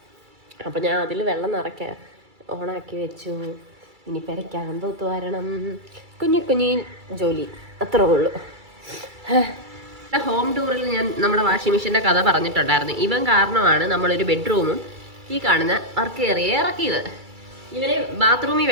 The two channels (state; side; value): late; left; 2.3 ms